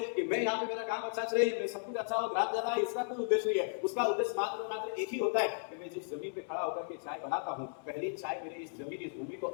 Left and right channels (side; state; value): right; silent; 54 dB below the other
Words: कि मैं यहाँ पे मेरा काम अच्छा चले, मैं सब कुछ अच्छा हो, ग्राहक ज्यादा है, इसका कोई उद्देश्य नहीं है। उसका उद्देश्य मात्र एक ही होता है कि मैं जिस जमीन पे खड़ा होकर के चाय बनाता हूँ, पहली चाय मेरे इस जमीन इस भूमि को